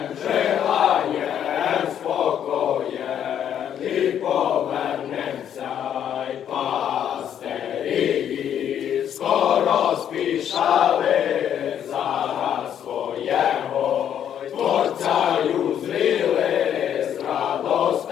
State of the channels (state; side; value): quieter; right; 9.5 dB